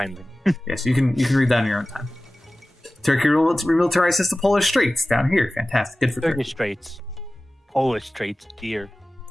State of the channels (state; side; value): normal; both; correlation 0.97